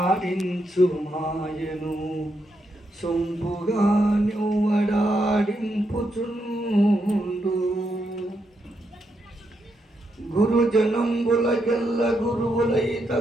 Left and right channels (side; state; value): both; normal; correlation 0.81